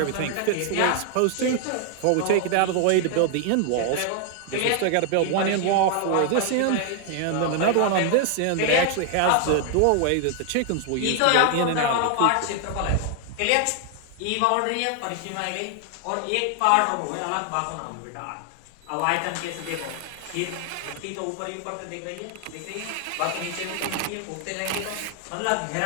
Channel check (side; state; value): both; different; correlation 0.00